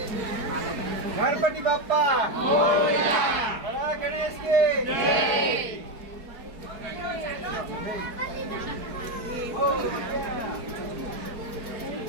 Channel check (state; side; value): late; left; 4.7 ms